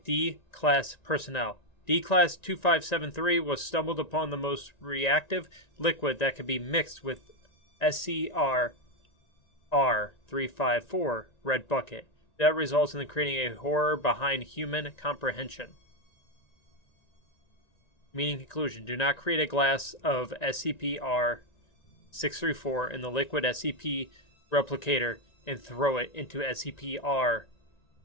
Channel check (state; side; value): late; right; 1.9 ms